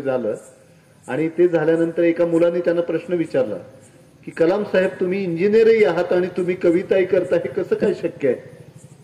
आणि ते झाल्यानंतर एका मुलाने त्यांना प्रश्न विचारला की कलाम साहेब, तुम्ही इंजिनियरही आहात आणि तुम्ही कविताही करता, हे कसं काय शक्य आहे?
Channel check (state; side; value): identical; both; correlation 1.00